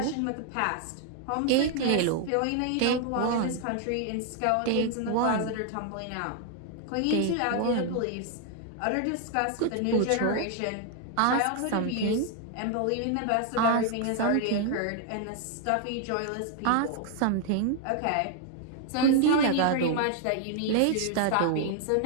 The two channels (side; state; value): both; different; correlation 0.00